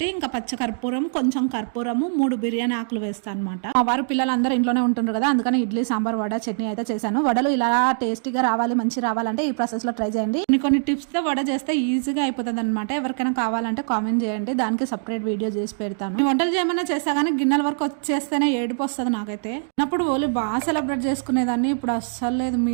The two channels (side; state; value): left; silent; digital silence